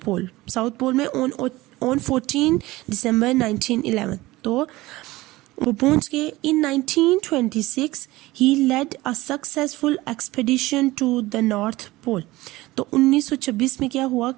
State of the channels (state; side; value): quieter; left; 19.0 dB